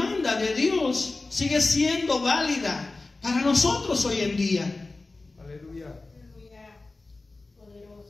de Dios sigue siendo válida para nosotros hoy en día. Aleluya.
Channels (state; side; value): quieter; right; 3.4 dB